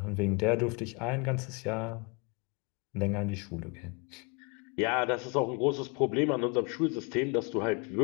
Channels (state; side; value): quieter; right; 31.0 dB